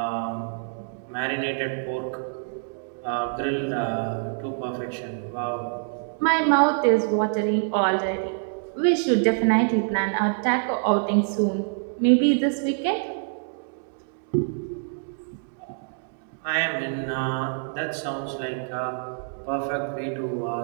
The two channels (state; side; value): silent; left; digital silence